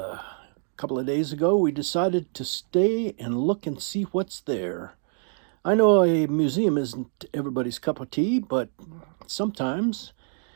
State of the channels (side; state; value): left; silent; 57 dB below the other